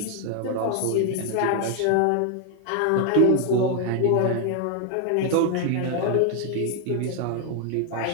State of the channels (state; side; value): different; both; correlation 0.00